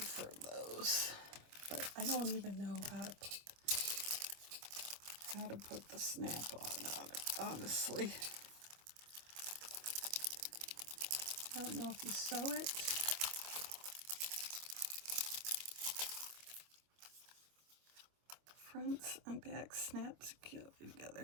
those. But I don't even know how to put the snap on it, honestly. I don't know if you sew it. Fronts and back snap securely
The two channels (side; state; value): left; late; 26 ms